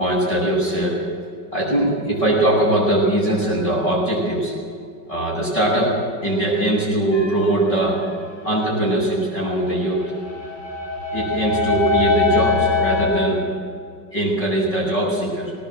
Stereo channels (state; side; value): late; right; 5.3 ms